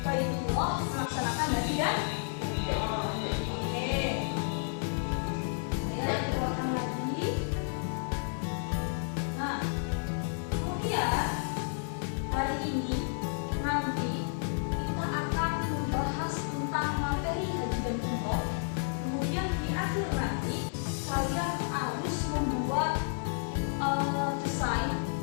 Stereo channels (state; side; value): silent; right; digital silence